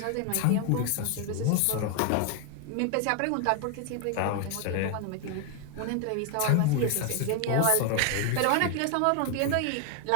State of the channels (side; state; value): both; different; correlation 0.00